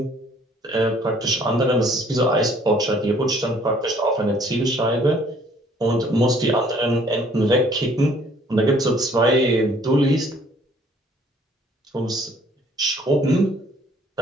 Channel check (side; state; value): both; normal; correlation 0.59